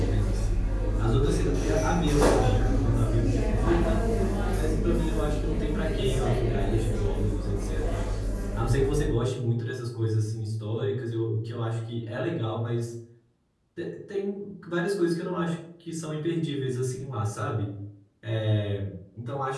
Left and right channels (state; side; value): identical; both; correlation 1.00